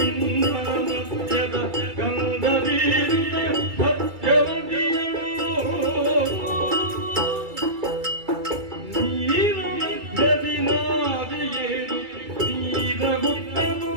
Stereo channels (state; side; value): late; left; 2.3 ms